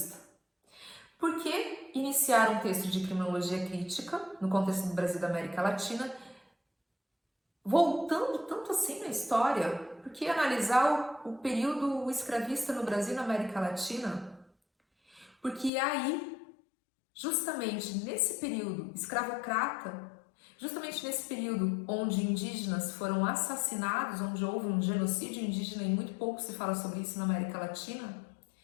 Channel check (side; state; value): right; drops out; at 15.7 s